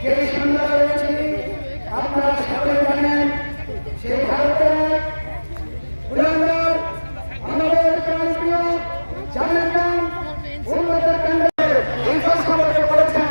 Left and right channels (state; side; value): inverted; both; correlation -1.00